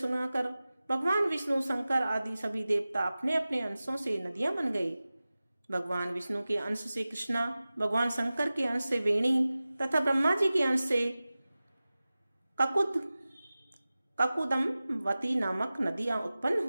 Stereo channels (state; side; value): inverted; both; correlation -0.97